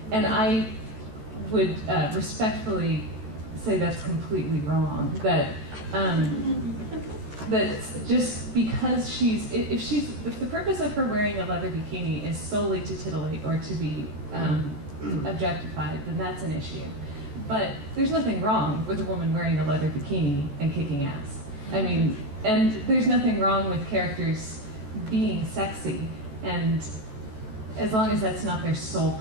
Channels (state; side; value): late; left; 14 ms